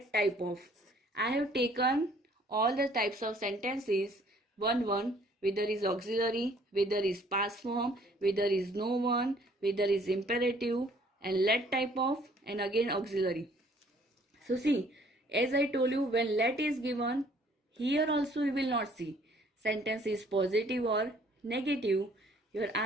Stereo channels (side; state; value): both; normal; correlation 0.59